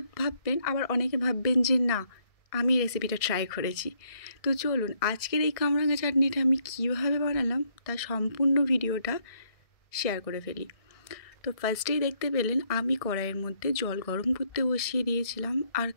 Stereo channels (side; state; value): right; late; 1.7 ms